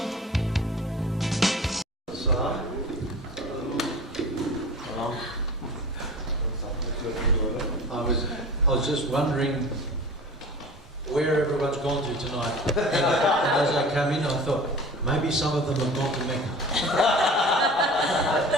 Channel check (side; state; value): both; normal; correlation 0.39